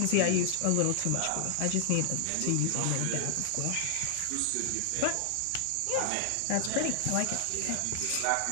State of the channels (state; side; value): different; both; correlation 0.00